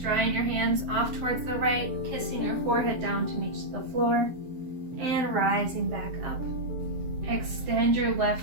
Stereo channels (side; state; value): left; late; 7.5 ms